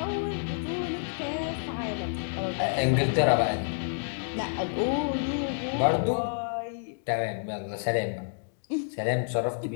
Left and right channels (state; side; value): silent; right; digital silence